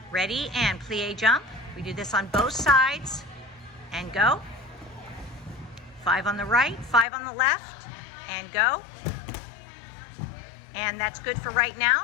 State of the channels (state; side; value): drops out; right; at 7.1 s